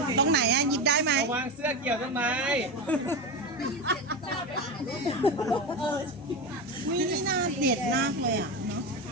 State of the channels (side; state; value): both; normal; correlation 0.18